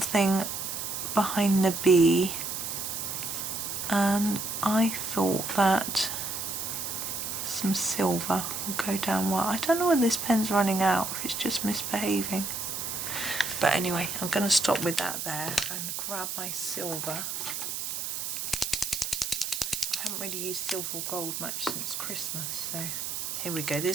behind the B, and I thought that some silver will go down well. I don't know when this pen's running out, if it's just misbehaving. But anyway, I'm going to stop with that there and grab my silver. I haven't really used silver or gold much since Christmas, so here we go.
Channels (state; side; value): noise; right; hiss, 4 dB below the sound